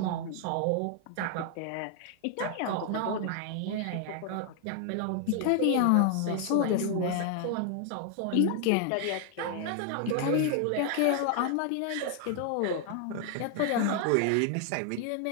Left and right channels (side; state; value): both; different; correlation 0.00